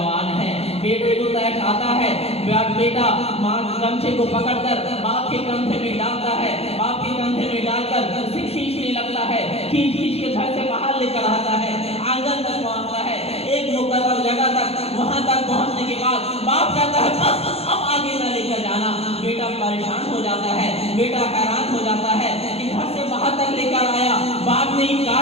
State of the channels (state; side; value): late; right; 0.29 ms